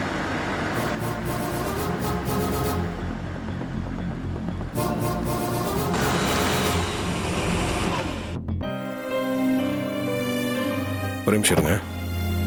ஒரு நிமிஷம் இருங்க.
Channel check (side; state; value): both; identical; correlation 1.00